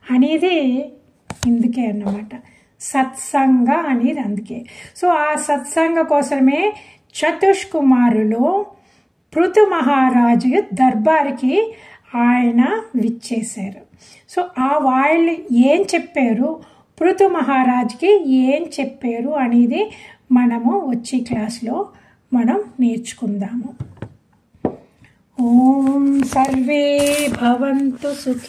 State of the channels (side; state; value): both; identical; correlation 1.00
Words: అనేది ఇందుకే అన్నమాట, సత్సంగ అనేది అందుకే. సో ఆ సత్సంగ కోసమే చతుష్కుమారులు పృథు మహారాజు దర్బార్కి ఆయన విచ్చేశారు. సో వాళ్ళు ఏం చెప్పారు, పృథు మహారాజుకి ఏం చెప్పారు అనేది మనము వచ్చే క్లాస్లో మనం నేర్చుకుందాము. ఓం సర్వే భవంతు